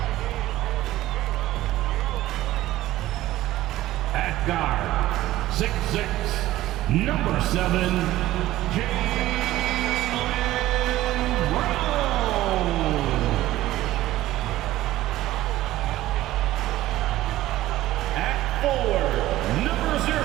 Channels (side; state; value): left; quieter; 15.4 dB